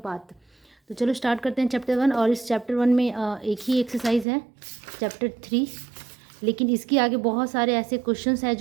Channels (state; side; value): drops out; left; at 4.2 s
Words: तो चलो स्टार्ट करते हैं चैप्टर 1। और इस चैप्टर 1 में एक ही एक्सरसाइज है चैप्टर 3, लेकिन इसके आगे बहुत सारे ऐसे क्वेश्चंस हैं